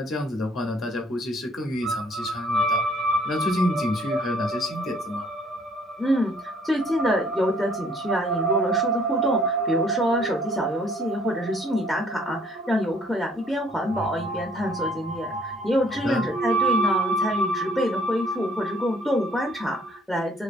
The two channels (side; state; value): both; normal; correlation 0.60